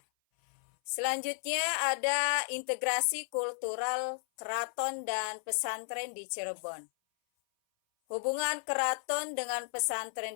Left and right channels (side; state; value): right; silent; 55 dB below the other